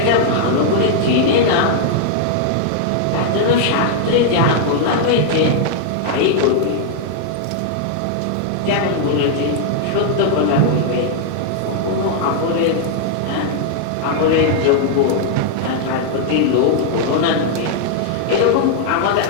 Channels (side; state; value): both; different; correlation -0.01